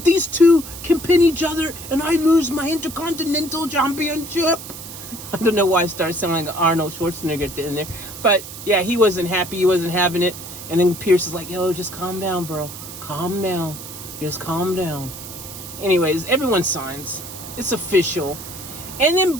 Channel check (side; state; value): right; noise; hiss, 12 dB below the sound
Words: two can pin each other and I lose my Intercontinental Championship?" I don't know why I started sounding like Arnold Schwarzenegger at the end there. But, yeah, he wasn't happy. He wasn't having it. And then Pierce is like, "Yo, just calm down, bro. Calm down. Just calm down." Anyways, everyone signs. It's official. And then